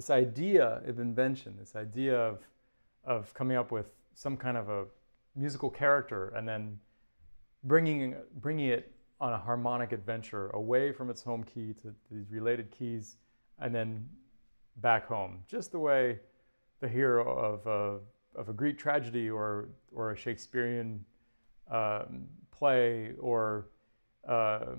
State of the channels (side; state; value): both; inverted; correlation -1.00